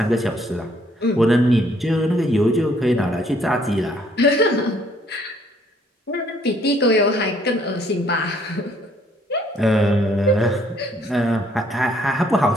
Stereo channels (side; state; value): both; normal; correlation 0.64